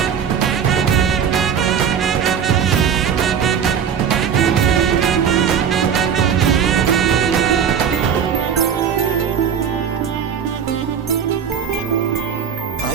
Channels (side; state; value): left; quieter; 7.8 dB